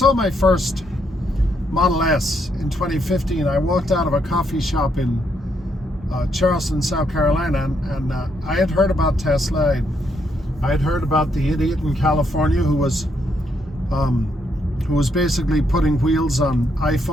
my first Model S in 2015. I walked out of a coffee shop in Charleston, South Carolina, and I had heard about Tesla. I had heard about the idiot in California who was basically putting wheels on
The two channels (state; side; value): normal; both; correlation 0.76